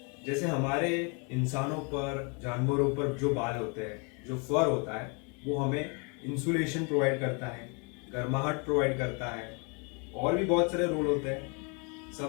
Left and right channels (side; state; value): right; quieter; 34.1 dB